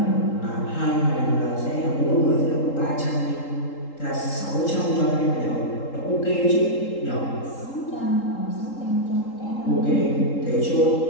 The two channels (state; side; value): late; right; 3.8 ms